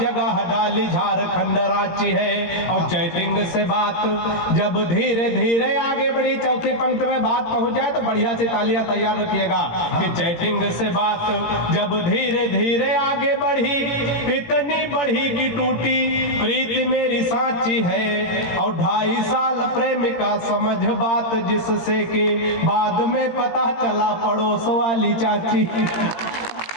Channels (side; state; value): right; late; 17 ms